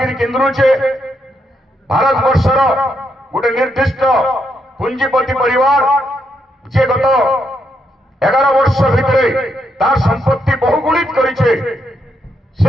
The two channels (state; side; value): normal; both; correlation 0.79